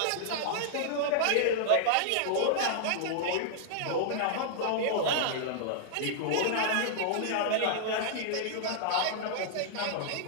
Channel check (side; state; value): both; different; correlation -0.01